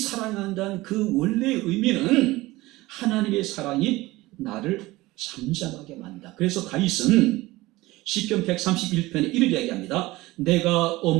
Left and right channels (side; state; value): left; quieter; 19.5 dB